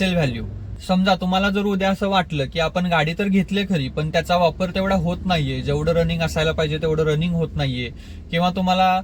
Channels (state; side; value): identical; both; correlation 1.00